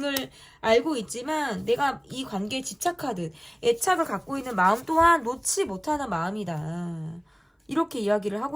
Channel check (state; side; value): identical; both; correlation 1.00